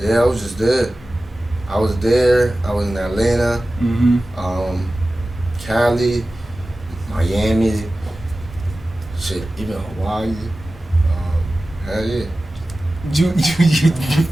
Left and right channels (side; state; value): both; normal; correlation 0.96